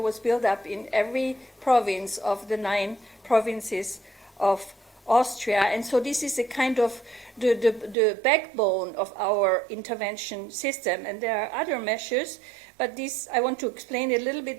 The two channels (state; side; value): drops out; left; at 8.0 s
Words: built up in every province of the 9 provinces of Austria. And so this is a kind of the backbone of our intervention system. And there are other measures, but this, I want to explain a little